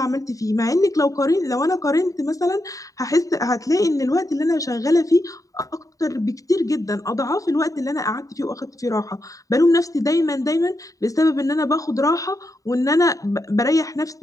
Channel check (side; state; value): right; late; 0.16 ms